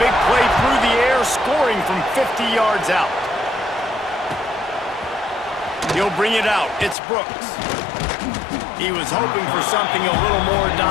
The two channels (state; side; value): drops out; right; at 7.0 s